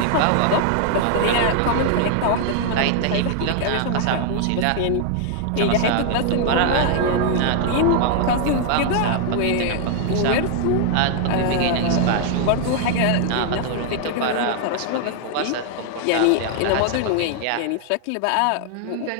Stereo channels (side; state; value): both; different; correlation 0.00